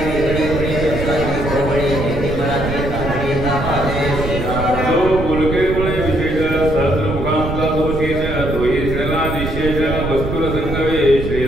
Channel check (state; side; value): noise; right; rumble, 4 dB below the sound